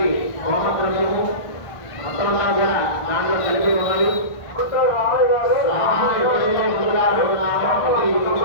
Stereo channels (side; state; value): right; late; 1.5 ms